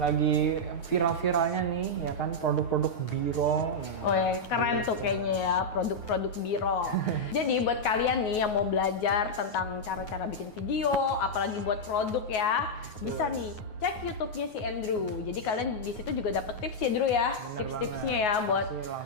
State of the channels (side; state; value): right; late; 9.4 ms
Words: viral-viralnya nih, ya kan, produk-produk biro. Oh ya, keren tuh kayaknya ya, produk-produk biro. Jadi buat kalian nih yang mau belajar tentang cara-cara bikin video, apalagi buat produk ya, bisa nih cek YouTube-nya si Andrew. Jadi kalian di situ juga dapet tips ya, Drew ya, tips-tipsnya ya buat